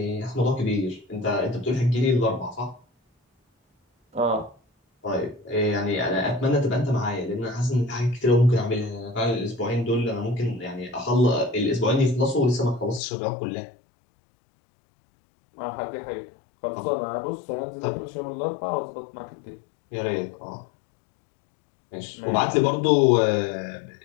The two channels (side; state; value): right; drops out; at 13.0 s